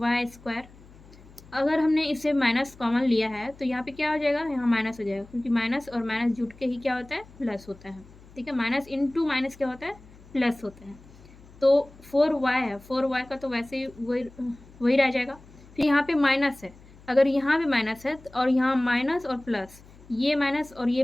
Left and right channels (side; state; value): left; noise; hum, 23 dB below the sound